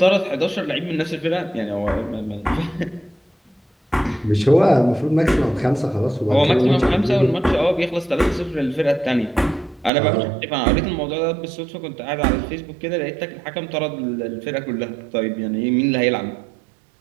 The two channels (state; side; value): drops out; left; at 9.9 s